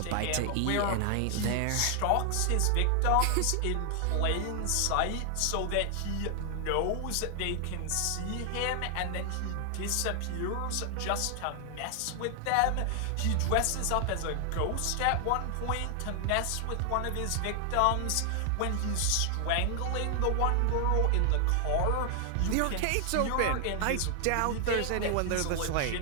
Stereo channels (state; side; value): different; both; correlation 0.00